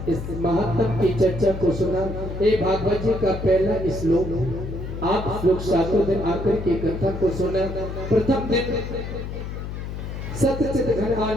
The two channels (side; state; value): left; noise; hum, 7 dB below the sound